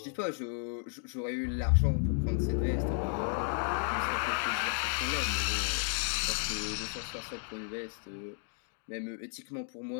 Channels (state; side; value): silent; right; 56 dB below the other